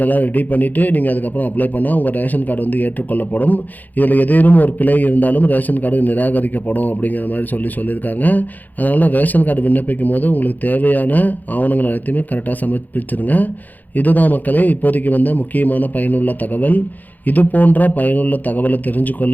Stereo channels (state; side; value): late; right; 0.083 ms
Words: ரெடி பண்ணிவிட்டு நீங்கள் அதுக்கப்புறம் அப்ளை பண்ணால் உங்கள் ரேஷன் கார்டு ஏற்றுக்கொள்ளப்படும். இதில் ஏதேனும் ஒரு பிழை இருந்தாலும் ரேஷன் கார்டு நிராகரிக்கப்படும் அப்படிங்கிற மாதிரி சொல்லியிருக்காங்க. அதனால் ரேஷன் கார்டு விண்ணப்பிக்கும் போது உங்களுக்கு தேவையான ஆவணங்கள் அனைத்துமே கரெக்டாக சமர்ப்பிச்சிருங்க. இதுதான் மக்களே இப்போதைக்கு முக்கியமான பயனுள்ள தகவல். இது போன்ற பயனுள்ள தகவலை